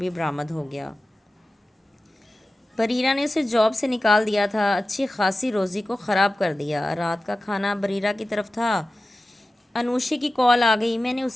برآمد ہو گیا۔ بریرہ نے اسے جاب سے نکال دیا تھا، اچھی خاصی روزی کو خراب کر دیا۔ رات کا کھانا بریرہ کی طرف تھا، انوشی کی کال آ گئی، میں نے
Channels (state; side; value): normal; both; correlation 0.95